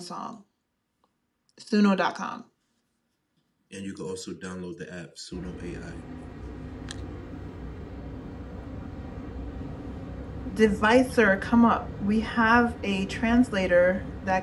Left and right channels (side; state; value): both; identical; correlation 1.00